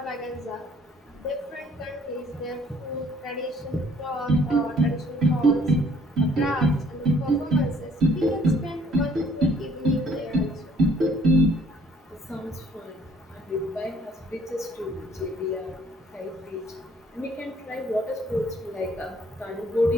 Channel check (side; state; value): both; normal; correlation 0.61